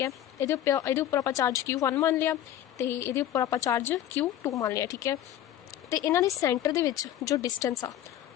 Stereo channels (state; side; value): quieter; right; 11.9 dB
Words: है। ये उपर आप चार्ज Q1 मान लिया तो ये उपर आप चार्ज Q2 मान लिया, ठीक है। तो इन्हों के सेंटर दे विच जो डिस्टेंस आ